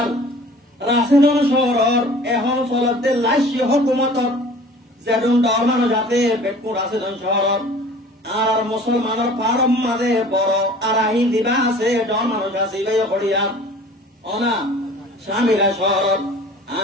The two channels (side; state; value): both; normal; correlation 0.46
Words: রাশিদন শহর এখন চলতে লাইসি হকুমত যেদুন ডর মানুষ আছে বেকুন রাশিদন শহর আর মুসলমানের পারম মাঝে বড় আর আহি দিবা আছে ডর মানুষ আছে হরিয়ার অনা স্বামীরা শহর